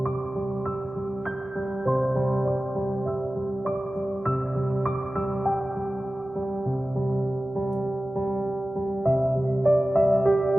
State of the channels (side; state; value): both; normal; correlation 0.96